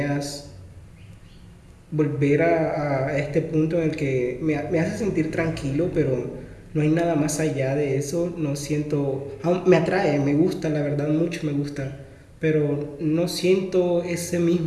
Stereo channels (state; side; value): identical; both; correlation 1.00